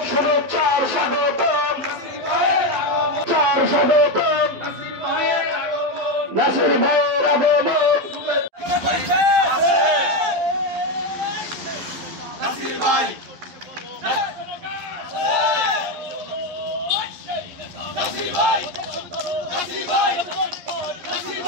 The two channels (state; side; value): late; left; 11 ms